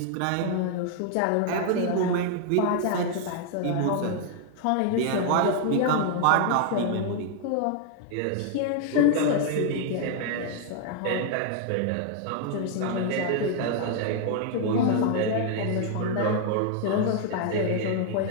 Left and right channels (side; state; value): both; different; correlation 0.00